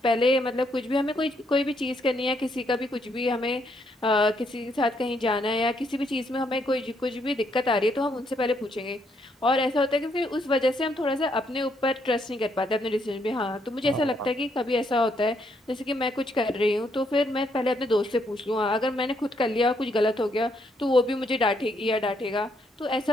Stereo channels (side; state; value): both; normal; correlation 0.74